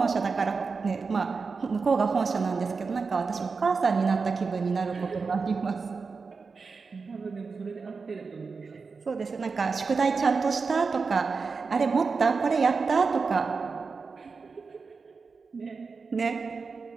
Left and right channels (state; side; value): quieter; left; 4.7 dB